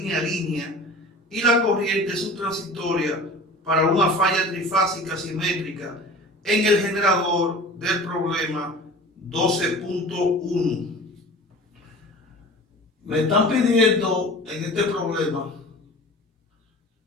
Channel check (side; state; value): both; normal; correlation 0.39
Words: y la corriente subtransitoria para una falla trifásica simétrica en el generador del problema 12.1. Me están pidiendo en este problema